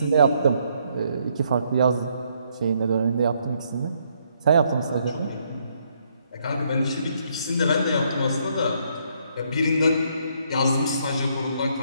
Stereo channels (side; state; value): both; inverted; correlation -0.71